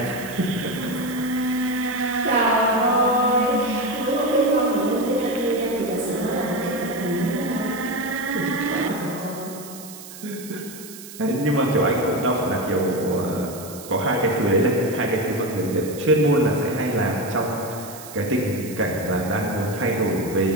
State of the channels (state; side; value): noise; right; hiss, 15 dB below the sound